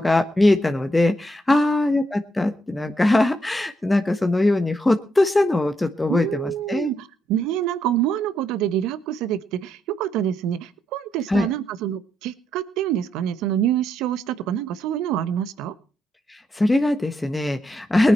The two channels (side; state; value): both; normal; correlation 0.79